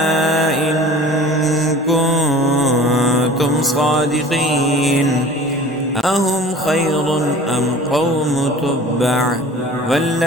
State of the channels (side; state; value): both; normal; correlation 0.44